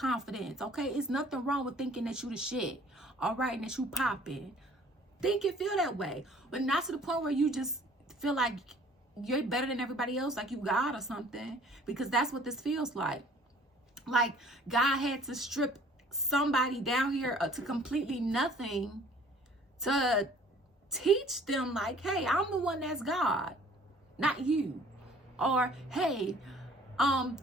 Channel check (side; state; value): both; normal; correlation 0.54